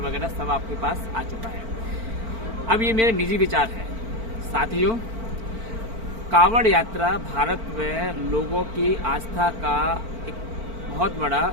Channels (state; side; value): late; left; 4.5 ms